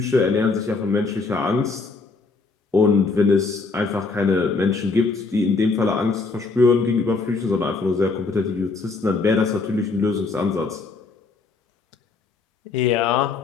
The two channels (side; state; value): right; quieter; 4.1 dB